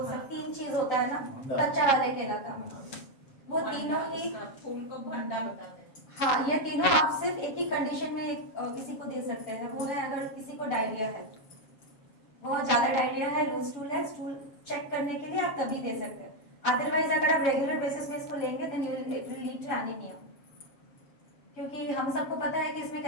सब 3 चीज होता है ना, कच्चा वाले केला का, वो तीनों ही फूल को भंडा बताते हैं। हाँ, ये तीनों आप सिर्फ एक ही कंडीशन में किसी को दे सकते हैं, वो है अगर किसी को डायरिया है, बहुत ज्यादा डायरिया है, लूज स्टूल है, स्टूल चेक करने के लिए आप तभी दे सकते हैं। अदरवाइज अगर आप रेगुलर बेसिस में इसको लेंगे then it will lead to anaemia, क्योंकि हम सबको पता है कि इसमें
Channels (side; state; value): right; late; 7.3 ms